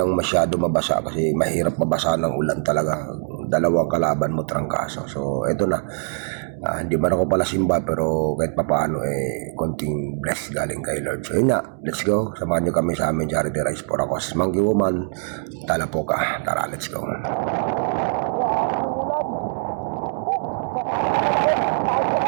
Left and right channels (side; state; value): left; silent; digital silence